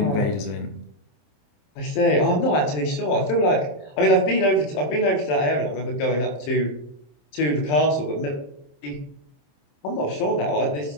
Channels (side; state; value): right; late; 27 ms